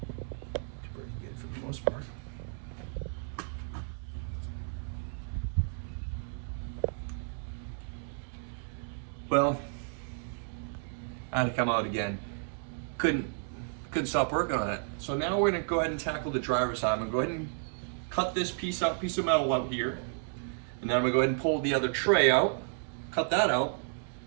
That's where you get it for the most part. Well, I had to come out again. Couldn't stop working on it. So now we're gonna go ahead and tackle the driver's side. I'm gonna go ahead and cut this piece of metal out here. And now I'm gonna go ahead and pull the other tray out, cut that out,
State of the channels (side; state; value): left; silent; 56 dB below the other